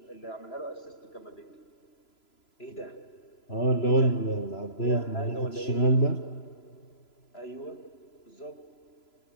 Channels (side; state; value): right; late; 3.0 ms